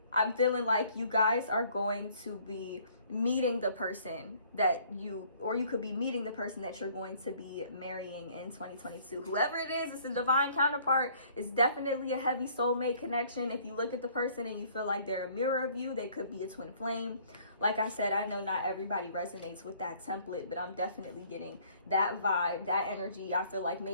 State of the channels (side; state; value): both; inverted; correlation -0.59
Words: I'm feeling like you guys are going to be meeting the person that you could be meeting the person that you're going to be marrying in 2022. Whoever it is, it's a divine counterpart. It's definitely a heavy soulmate connection. If you look at the person and you feel like they're a mirror of you, they could be a twin flame. Like I said, I know not everybody resonates with that template, but I'm definitely getting that vibe, that energy. I feel like